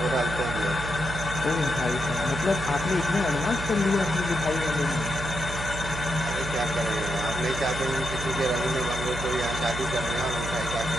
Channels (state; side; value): noise; right; hum, 7 dB below the sound